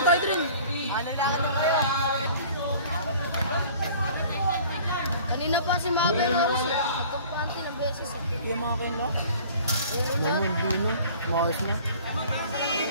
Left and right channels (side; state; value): both; inverted; correlation -0.48